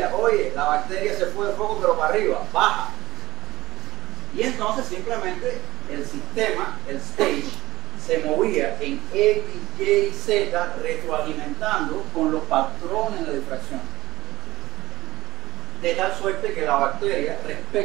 oye, la bacteria se fue de foco pero para arriba, baja. Y entonces simplemente el sistema, el stage, se movía en X, Y, Z, retroalimentando con los patrones de difracción. De tal suerte que la bacteria,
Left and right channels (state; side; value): quieter; left; 17.4 dB